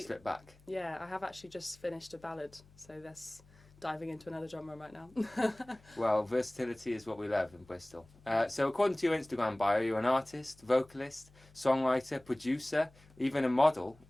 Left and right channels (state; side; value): noise; left; hum, 26 dB below the sound